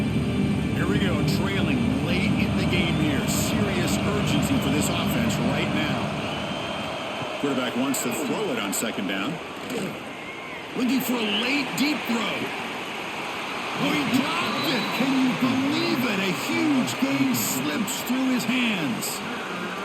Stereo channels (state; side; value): identical; both; correlation 1.00